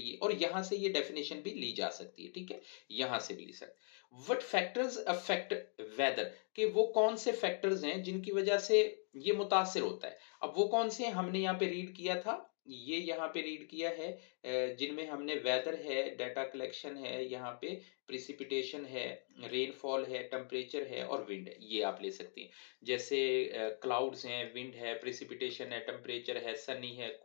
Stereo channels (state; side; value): silent; right; 51 dB below the other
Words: और यहां से ये डेफिनेशन भी ली जा सकती है, ठीक है, यहां से भी ली सकते। व्हाट फैक्टर्स अफेक्ट वेदर, कि वो कौन से फैक्टर्स हैं जिनकी वजह से ये मुतासिर होता है। अब वो कौन से हैं, हमने यहाँ पे रीड किया था, ये यहाँ पे रीड किया है, जिनमें हमने वेदर है, डाटा कलेक्शन है, यहाँ पे प्रिसिपिटेशन है, रेनफॉल है, टेम्परेचर है और विंड है, ये आप ले सकते हैं। जैसे क्लाउड्स हैं, विंड है, प्रिसिपिटेशन है, टेम्परेचर है, सनी है,